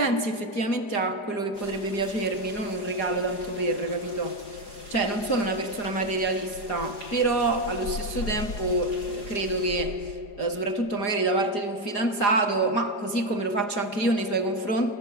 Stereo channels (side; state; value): right; late; 4.9 ms